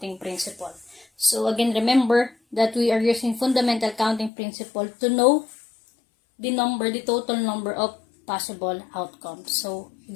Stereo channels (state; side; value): drops out; right; at 4.3 s